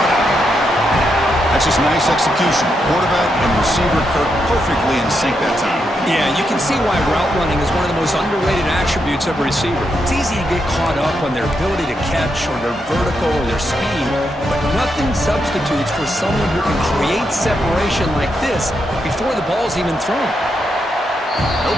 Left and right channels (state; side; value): normal; both; correlation 0.82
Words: That's just nice execution. Quarterback and receiver Kirk perfectly in sync that time. Yeah, you can see why route running is one of the most underrated attributes of a receiver. It's easy to get caught up on their ability to catch or their vertical or their speed, but nothing substitutes for someone who can create separation like this before the ball's even thrown. No